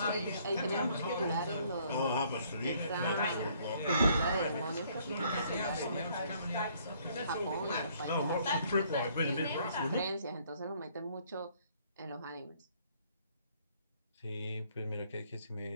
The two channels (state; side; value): inverted; both; correlation -0.63